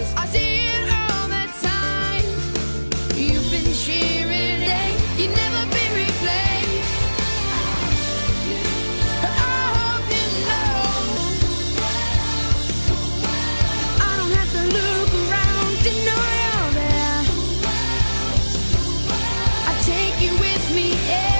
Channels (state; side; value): inverted; both; correlation -1.00